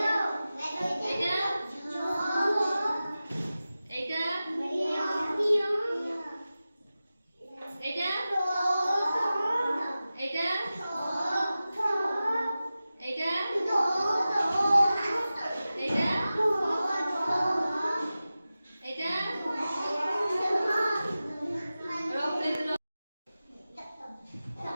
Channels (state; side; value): inverted; both; correlation -0.95